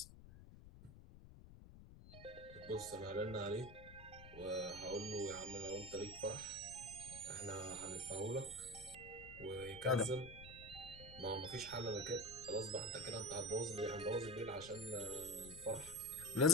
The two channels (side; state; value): left; noise; rumble, 16 dB below the sound